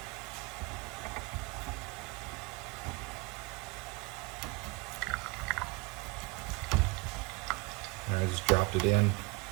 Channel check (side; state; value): left; quieter; 23.9 dB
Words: And I just dropped it in.